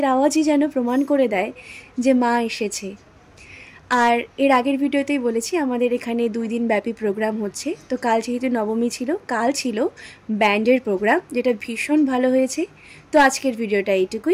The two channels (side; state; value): both; identical; correlation 1.00